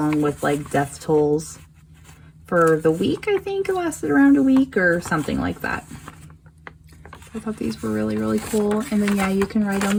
with like death tolls for the week. I think it lasted around a week or something like that. I thought these were really, really cool. And then yeah, you can write on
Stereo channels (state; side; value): identical; both; correlation 1.00